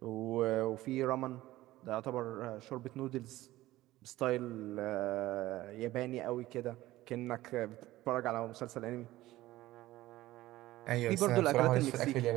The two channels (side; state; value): left; quieter; 16.5 dB